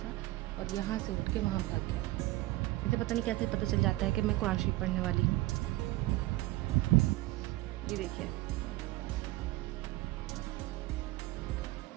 और यहाँ से उठ के वहाँ भाग गया। इसे पता नहीं कैसे पता चल जाता है कि मैं कुरान शरीफ पढ़ने वाली हूँ। ये देखिए,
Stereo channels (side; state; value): left; quieter; 18.8 dB